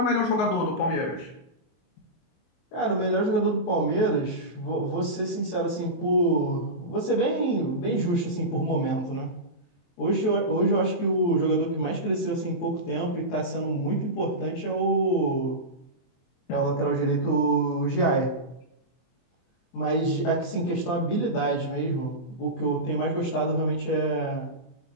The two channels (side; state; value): right; late; 23 ms